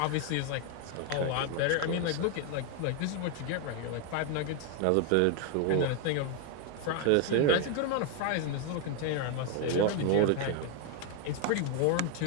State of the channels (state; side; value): different; both; correlation 0.01